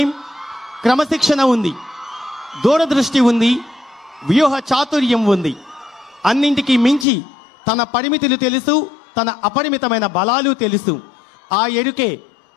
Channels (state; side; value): drops out; right; at 7.1 s